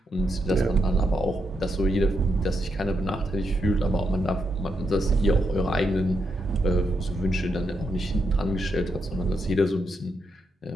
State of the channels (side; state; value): both; normal; correlation 0.82